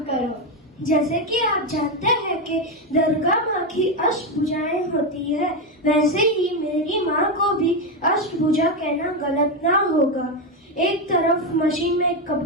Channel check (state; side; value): normal; both; correlation 0.09